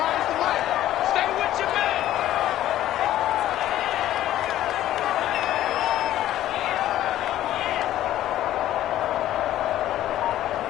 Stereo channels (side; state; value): right; quieter; 13.2 dB